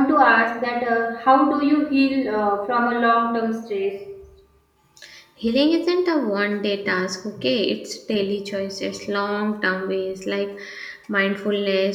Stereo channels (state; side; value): identical; both; correlation 1.00